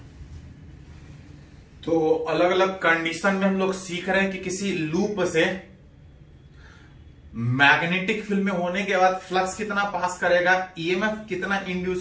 तो अलग अलग कंडीशन में हम लोग सीख रहे हैं कि किसी लूप से मैग्नेटिक फील्ड में होने के बाद फ्लक्स कितना पास करेगा, ईएमएफ कितना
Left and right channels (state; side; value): identical; both; correlation 1.00